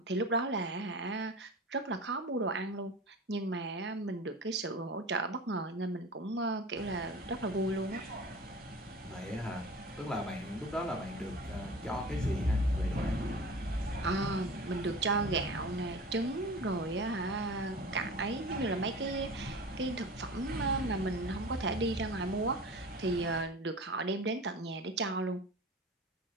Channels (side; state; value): both; normal; correlation 0.36